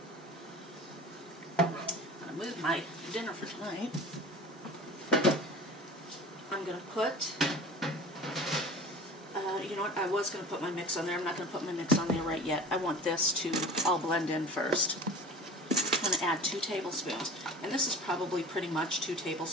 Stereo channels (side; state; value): both; normal; correlation 0.38